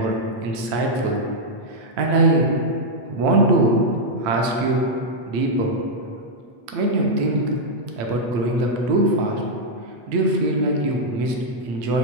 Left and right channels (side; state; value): left; late; 8.3 ms